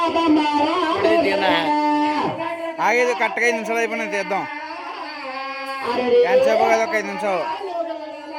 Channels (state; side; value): identical; both; correlation 1.00